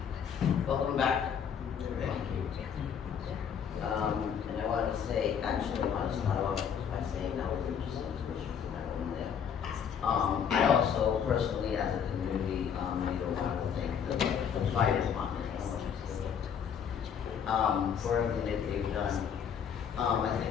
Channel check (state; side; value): quieter; right; 7.8 dB